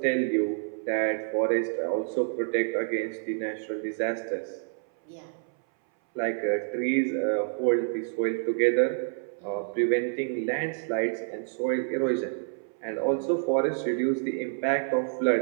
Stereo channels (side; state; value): left; silent; 59 dB below the other